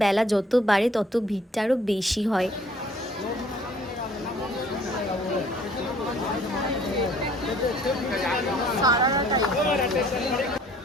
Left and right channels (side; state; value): both; normal; correlation 0.57